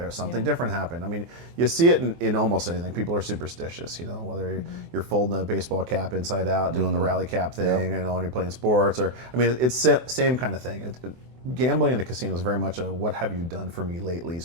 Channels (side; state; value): left; late; 24 ms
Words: something different happened. I mean, you see it in almost anything. People are superstitious, whether you're folding a baseball cap inside out, doing the rally cap thing, when you're playing sports, or, I mean, it's same kind of thing. Gambling in a casino is very much a "what have you done for me lately"